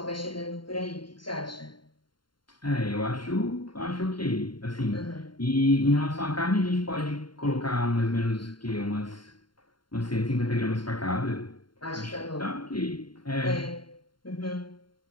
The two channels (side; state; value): right; late; 0.72 ms